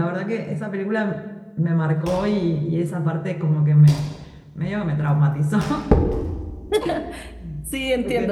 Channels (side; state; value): both; identical; correlation 1.00